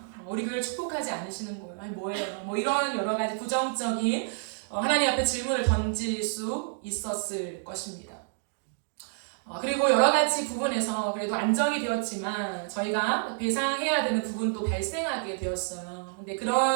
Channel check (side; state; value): left; silent; digital silence